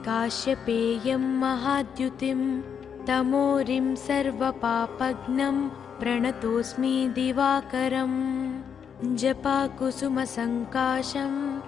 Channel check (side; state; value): right; quieter; 7.4 dB